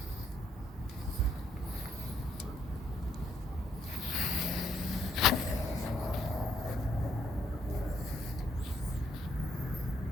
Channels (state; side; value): normal; both; correlation 0.71